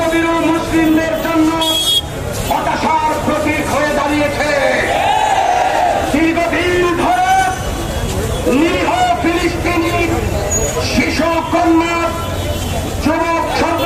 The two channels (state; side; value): identical; both; correlation 1.00